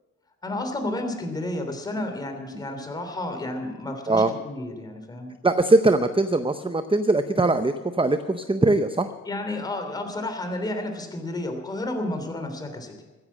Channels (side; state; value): both; normal; correlation 0.64